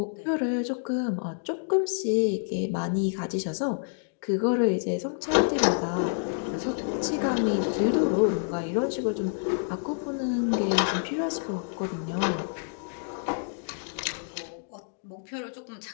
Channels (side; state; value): right; silent; digital silence